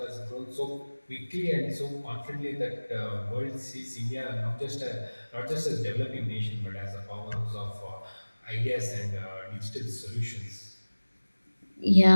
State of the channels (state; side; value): inverted; both; correlation -1.00